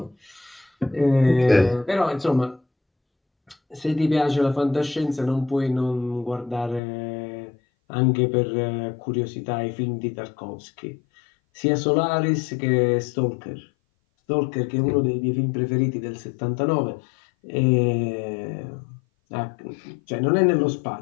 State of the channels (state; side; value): drops out; right; at 6.8 s